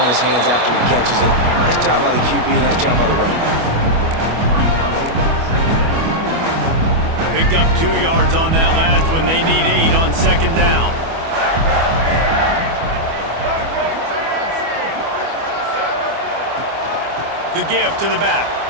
in his hands after he catches it. Nice job by the QB. Nice job by the running back. Picked up 2 yards on that last one. They need 8 on second down. The give to the back.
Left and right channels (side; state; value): left; late; 25 ms